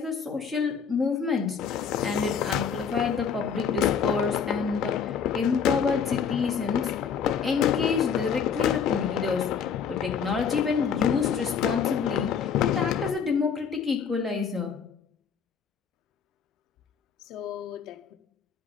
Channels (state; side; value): quieter; right; 6.7 dB